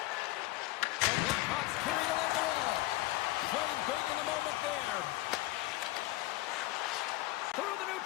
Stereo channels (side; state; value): right; quieter; 18.9 dB